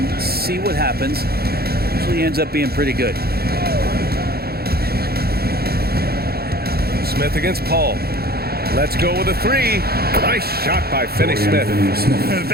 see what happens. Usually ends up being pretty good. Smith against Paul. Let's go with a 3. Nice shot by Finney-Smith.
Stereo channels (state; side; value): late; left; 0.45 ms